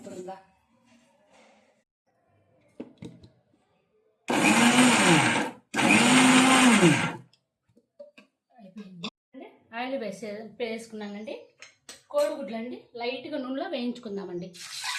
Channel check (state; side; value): identical; both; correlation 1.00